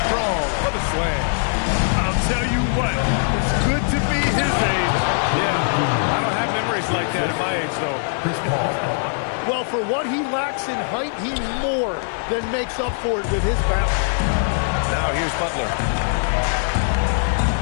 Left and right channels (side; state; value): right; silent; 57 dB below the other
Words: strong for the slam. I'll tell you what, it's good to be his age. Yeah, I don't have memories like that at my age, though. Well, for what he lacks in height, he more than makes up for it with his bounce. Now here's Butler.